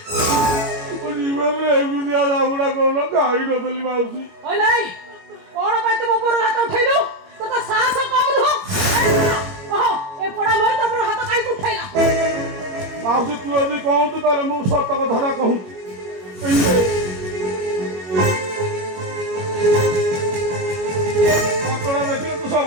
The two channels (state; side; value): late; left; 21 ms